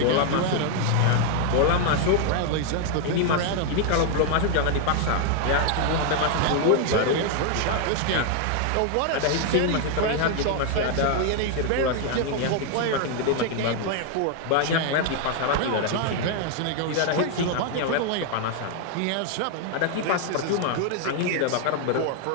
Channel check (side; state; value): both; different; correlation 0.00